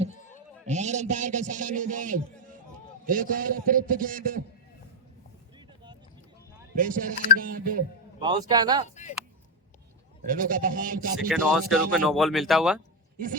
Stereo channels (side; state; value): both; normal; correlation 0.07